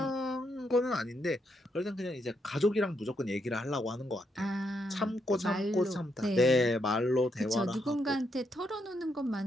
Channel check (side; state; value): both; normal; correlation 0.78